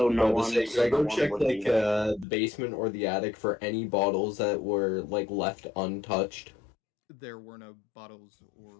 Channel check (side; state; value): right; drops out; at 2.2 s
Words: no to one- say, so should I no go one check would be there? the basement or the attic for any bottles that were left untouched? There were no bottles